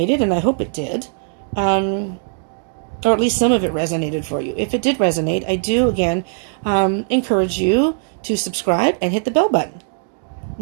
and I hope it did, or at least some of it resonated for you. If it did resonate, I do, again, encourage you to subscribe and hit the bell button.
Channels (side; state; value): left; silent; digital silence